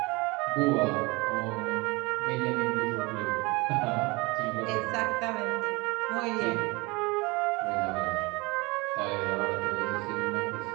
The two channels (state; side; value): quieter; left; 25.0 dB